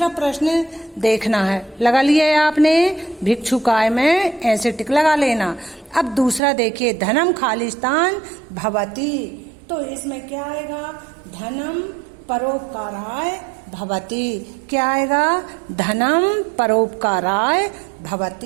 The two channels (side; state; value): left; drops out; at 6.4 s